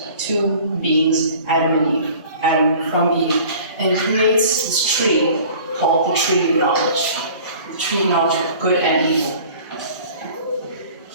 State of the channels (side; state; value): both; inverted; correlation -0.47